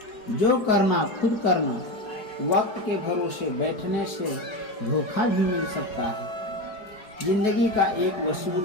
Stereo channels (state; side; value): late; right; 4.8 ms